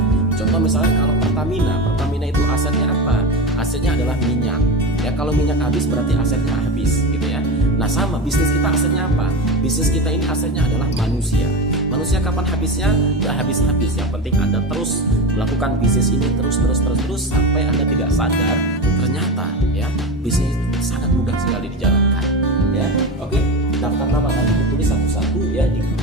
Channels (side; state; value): both; normal; correlation 0.22